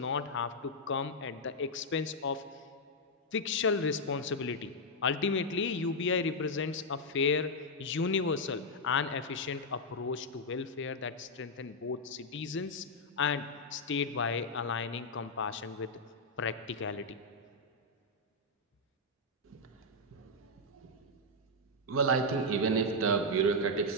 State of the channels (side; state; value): both; normal; correlation -0.03